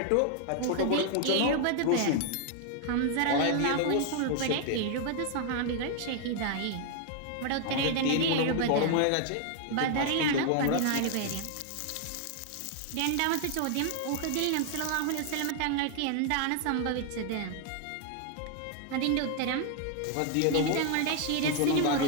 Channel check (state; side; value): different; both; correlation 0.00